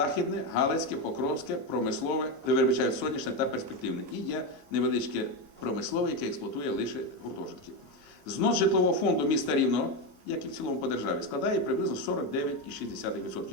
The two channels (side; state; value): left; late; 1.5 ms